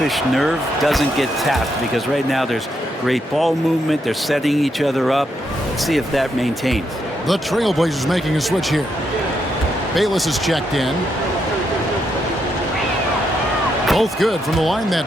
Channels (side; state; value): both; normal; correlation 0.79